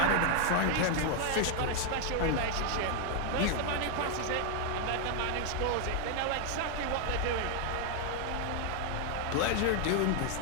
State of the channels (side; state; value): both; different; correlation 0.00